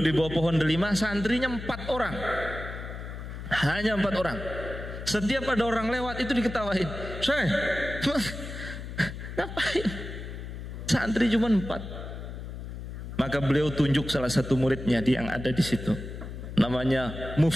di bawah pohon delima, santrinya 4 orang. Hanya 4 orang. Setiap ada orang lewat itu diketawain. Syekh, ngapain? Santri cuma 4. Maka beliau tunjuk salah satu muridnya yang ada di situ, namanya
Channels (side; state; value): left; noise; hum, 9 dB below the sound